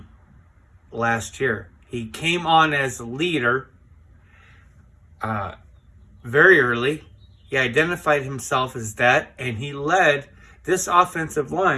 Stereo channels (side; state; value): both; identical; correlation 1.00